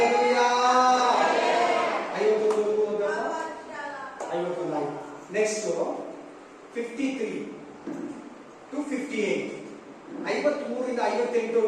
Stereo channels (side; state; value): both; identical; correlation 1.00